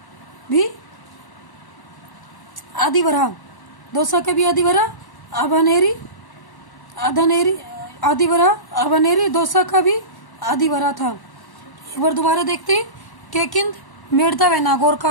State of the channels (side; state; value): right; late; 1.0 ms